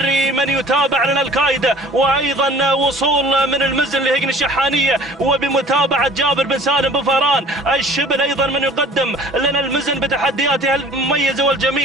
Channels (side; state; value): both; normal; correlation 0.48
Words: من يتابع لنا الكايدة وأيضا وصول من المزن لهجن الشحانية وبمتابعة جابر بن سالم بن فاران الشبل أيضا من يقدم لنا المزن بتحدياتها المميزة